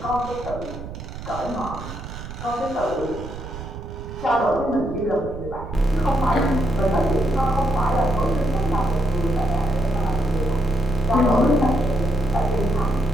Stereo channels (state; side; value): noise; right; rumble, 11 dB below the sound